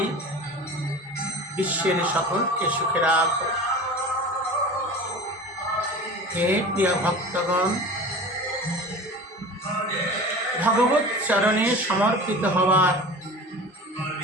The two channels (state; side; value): normal; both; correlation 0.36